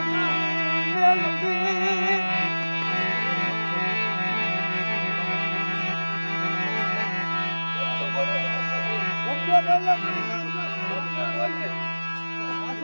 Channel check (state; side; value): inverted; both; correlation -1.00